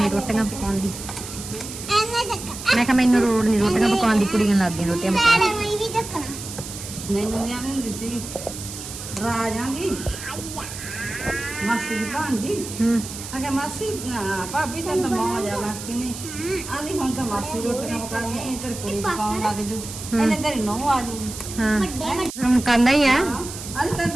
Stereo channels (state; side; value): noise; right; hiss, 10 dB below the sound